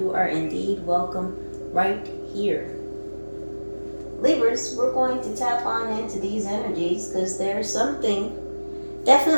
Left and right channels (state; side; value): inverted; both; correlation -1.00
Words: are indeed welcome right here. Libras, we're going to tap on into these energies because there's something